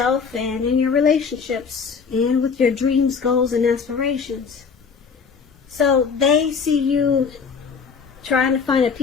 and in your relationships and with your dreams, goals, and aspirations. So they see you trying to find a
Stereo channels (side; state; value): right; quieter; 5.7 dB